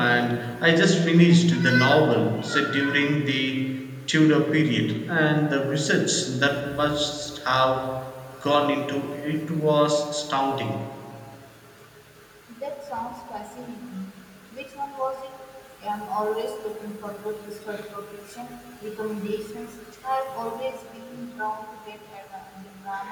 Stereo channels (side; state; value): both; identical; correlation 1.00